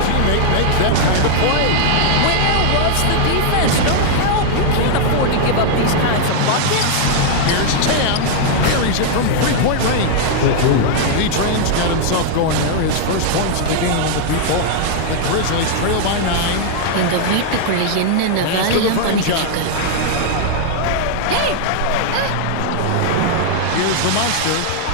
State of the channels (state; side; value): different; both; correlation -0.01